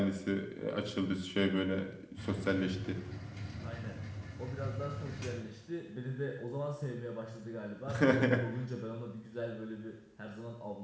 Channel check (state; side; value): identical; both; correlation 1.00